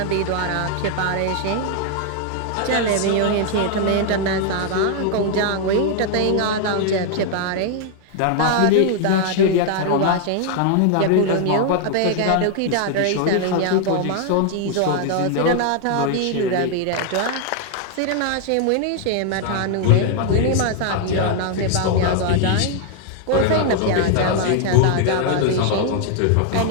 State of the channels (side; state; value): both; different; correlation 0.00